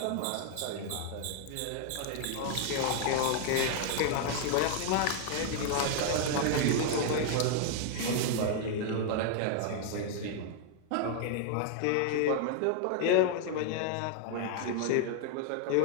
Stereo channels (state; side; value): different; both; correlation 0.00